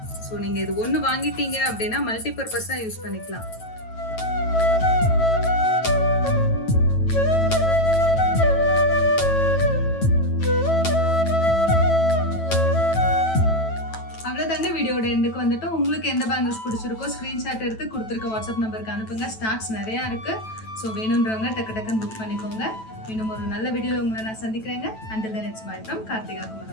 ஸோ நீங்கள் இது ஒன்று வாங்கிட்டீங்க அப்படின்னா மல்டிபர்பஸாக யூஸ் பண்ணிக்கலாம். வீடியோட எண்டுக்கு வந்துட்டு உங்களுக்கு எந்த பேங்கிள்ஸ் பிடிச்சிருக்கோ ஸ்க்ரீன்ஷாட் எடுத்து கொடுத்துருக்க வாட்ஸ்அப் நம்பருக்கு அனுப்புங்க. ஸ்டாக்ஸ் நிறையா இருக்கு. ஸோ வேணுன்றவங்க டக்குன்னு புக் பண்ணிக்கோங்க. இன்னும் ஒரு நல்ல வீடியோவில் உங்களை நான் சந்திக்கிறேங்க. Until then, it's bye from Karthika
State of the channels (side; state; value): right; late; 9.1 ms